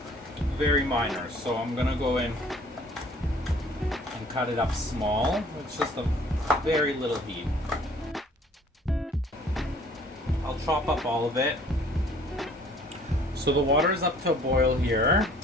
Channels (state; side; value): normal; both; correlation 0.55